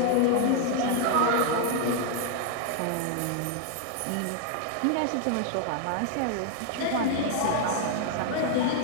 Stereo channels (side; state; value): both; different; correlation 0.00